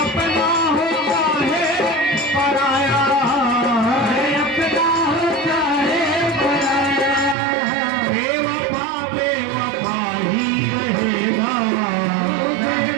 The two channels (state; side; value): drops out; left; at 7.4 s